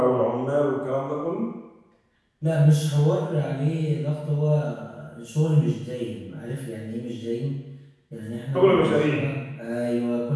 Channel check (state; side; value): identical; both; correlation 1.00